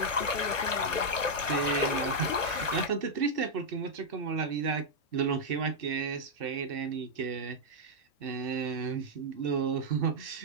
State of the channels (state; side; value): late; right; 1.1 ms